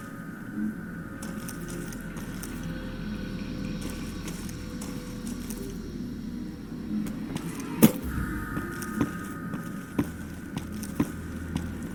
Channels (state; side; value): identical; both; correlation 1.00